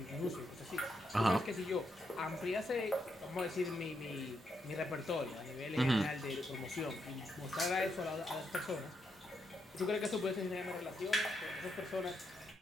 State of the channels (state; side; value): normal; both; correlation 0.81